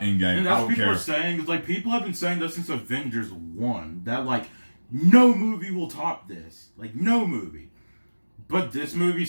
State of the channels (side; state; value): both; inverted; correlation -1.00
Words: Endgame. And that's I don't what people care. are saying. It's like people have been saying that since Avengers 1. That like no movie will top this. Like no movie. But this movie